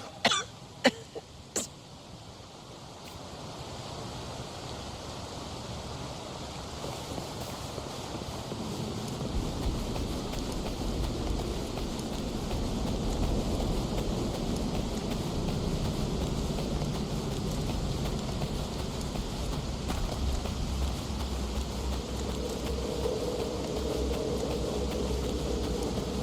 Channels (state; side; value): identical; both; correlation 1.00